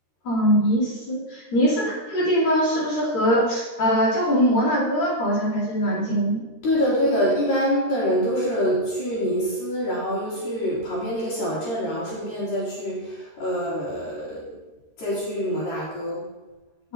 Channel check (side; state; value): right; late; 13 ms